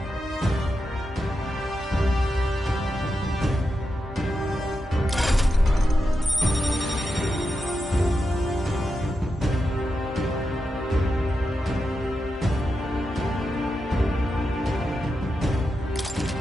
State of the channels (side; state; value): both; normal; correlation 0.88